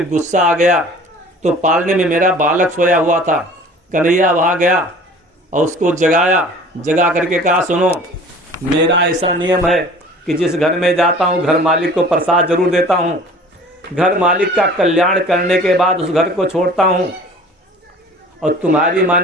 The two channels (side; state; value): both; normal; correlation 0.46